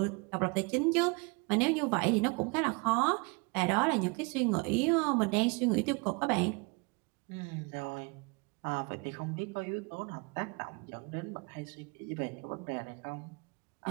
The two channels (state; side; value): quieter; left; 30.6 dB